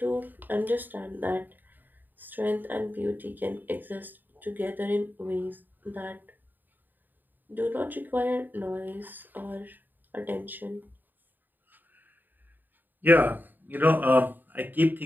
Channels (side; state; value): left; late; 0.090 ms